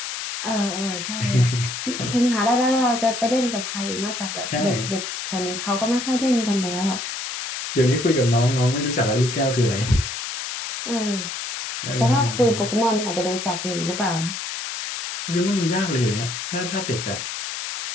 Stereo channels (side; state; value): left; noise; hiss, 6 dB below the sound